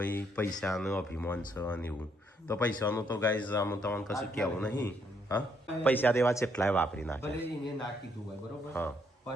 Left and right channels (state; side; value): normal; both; correlation 0.72